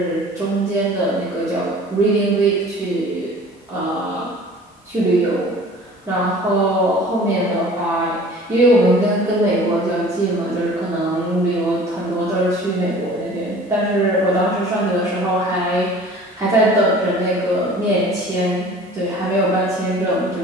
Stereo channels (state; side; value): normal; both; correlation 0.46